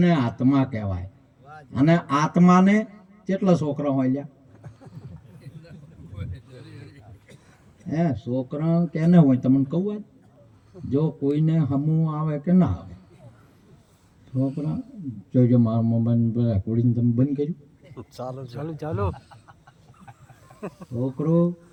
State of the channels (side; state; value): both; identical; correlation 1.00